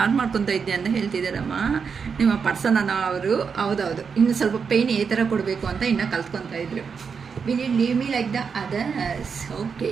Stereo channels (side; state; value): left; quieter; 6.0 dB